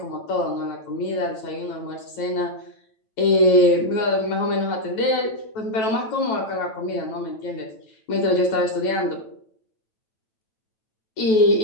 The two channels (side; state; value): right; late; 9.0 ms